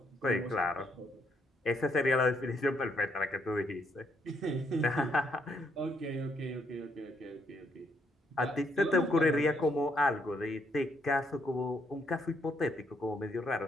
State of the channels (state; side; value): normal; both; correlation 0.73